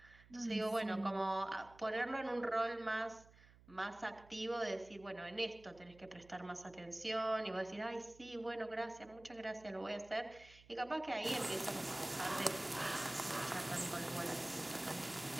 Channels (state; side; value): noise; right; hum, 23 dB below the sound